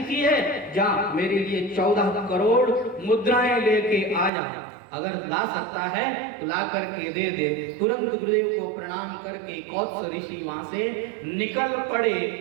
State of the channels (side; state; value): left; drops out; at 4.3 s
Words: है, जा मेरे लिए 14 करोड़ मुद्राएं लेके आ जा, अगर ला सकता है तो ला करके दे दे। तुरंत गुरुदेव को प्रणाम करके कोत्स ऋषि वहां से निकल पड़े